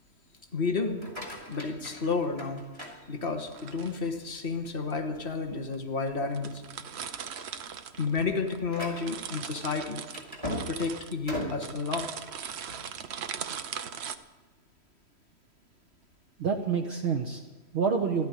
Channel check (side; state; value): left; late; 3.1 ms